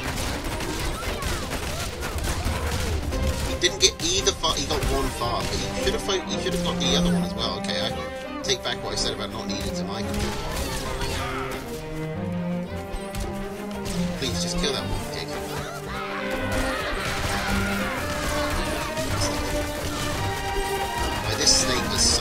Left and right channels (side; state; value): both; identical; correlation 1.00